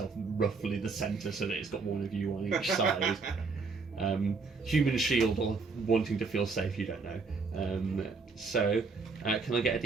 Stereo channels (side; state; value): left; quieter; 4.4 dB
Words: roughly the centre so that it's got one of you on each side. Human shield or wanting to feel safe, you don't know. Can I get a